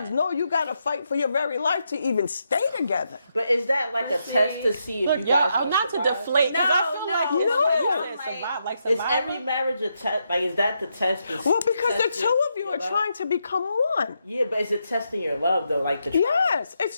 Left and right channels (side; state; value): both; inverted; correlation -0.81